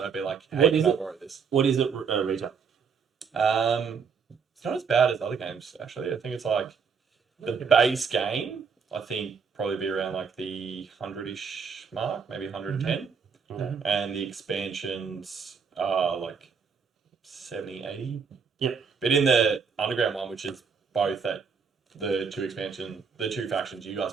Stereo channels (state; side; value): quieter; left; 5.9 dB